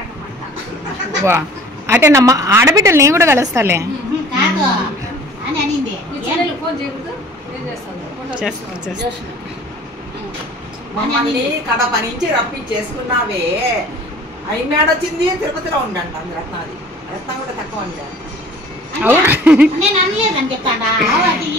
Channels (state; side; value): normal; both; correlation 0.48